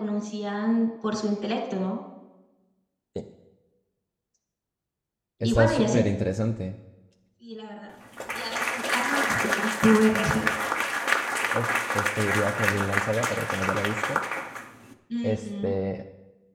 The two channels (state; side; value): identical; both; correlation 1.00